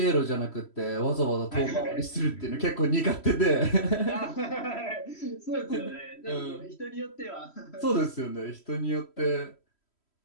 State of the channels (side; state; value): right; late; 3.1 ms